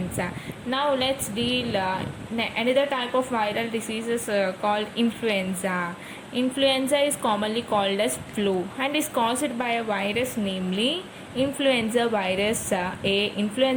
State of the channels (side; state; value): both; identical; correlation 1.00